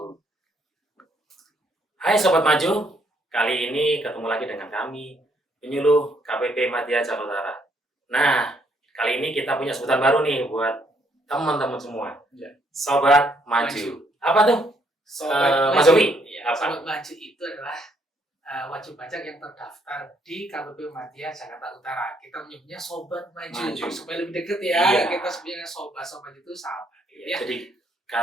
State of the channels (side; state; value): both; normal; correlation 0.70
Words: Hai Sobat Maju, kali ini ketemu lagi dengan kami, penyuluh KPP Madya Jakarta Utara. Nah, kali ini kita punya sebutan baru nih buat teman-teman semua. Ya. Sobat Maju. Apa tuh? Mas Zobi? Sobat Maju itu adalah wajib pajak yang terdaftar di KPP Madya Jakarta Utara. Kita menyebutnya Sobat Maju. Supaya lebih deket ya. Iya. Kita sebenarnya sobat itu sahabat. Ya. Jadi